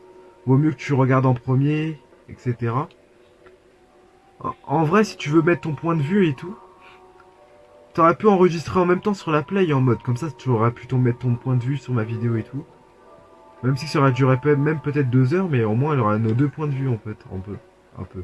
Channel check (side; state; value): both; identical; correlation 1.00